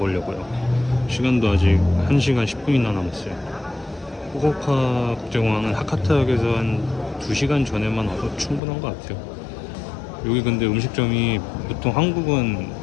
시간도 아직 1시간 10분이나 남았어요. 후쿠오카 국제공항은 하카타역에서 한 2시간 전에만 와서 충분한 것 같아요. 여기 근데 음식점이 보통 한국은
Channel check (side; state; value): right; drops out; at 8.6 s